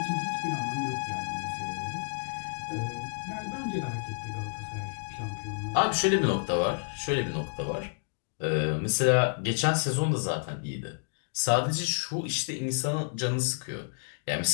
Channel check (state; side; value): silent; right; digital silence